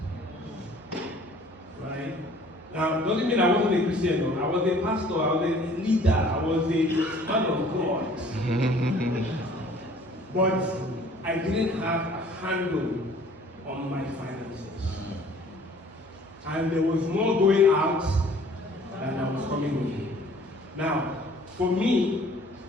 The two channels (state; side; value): normal; both; correlation 0.53